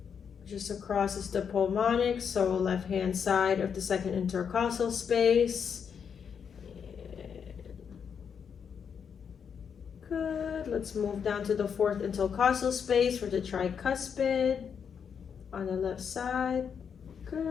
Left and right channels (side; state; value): right; quieter; 7.1 dB